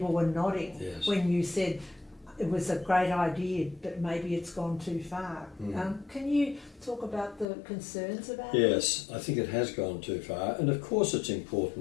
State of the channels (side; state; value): right; drops out; at 7.5 s